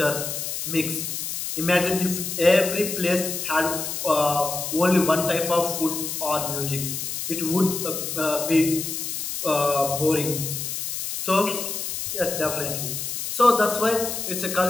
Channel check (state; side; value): noise; left; hiss, 4 dB below the sound